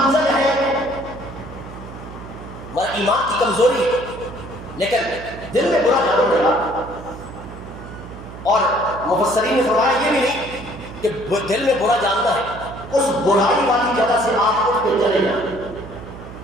ہے. ایمان کی کمزوری ہے، لیکن دل میں برا جانو نہیں. اور مفسرین نے فرمایا یہ بھی نہیں کہ دل میں برا جاننا ہے، اس برائی والی جگہ سے آپ اٹھ کے چلے جائیں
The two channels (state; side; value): noise; right; hum, 14 dB below the sound